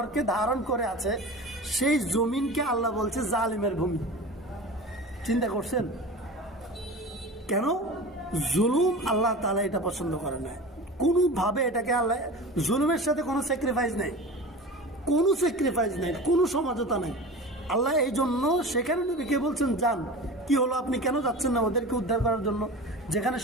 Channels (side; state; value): both; normal; correlation 0.34